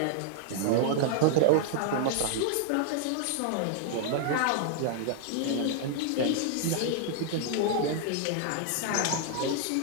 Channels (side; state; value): both; different; correlation -0.01